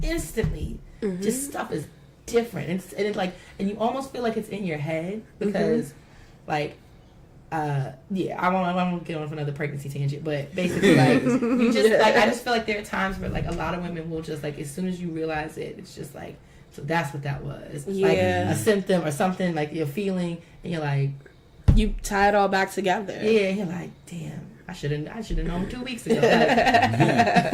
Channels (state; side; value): identical; both; correlation 1.00